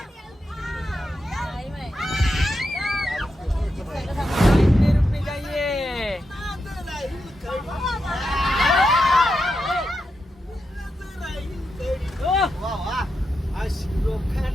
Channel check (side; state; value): both; normal; correlation 0.86